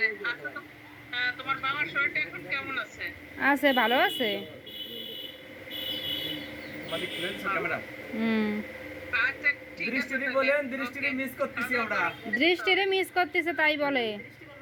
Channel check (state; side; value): identical; both; correlation 1.00